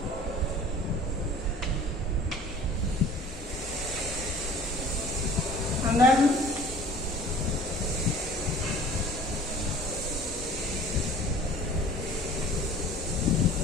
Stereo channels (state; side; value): normal; both; correlation 0.47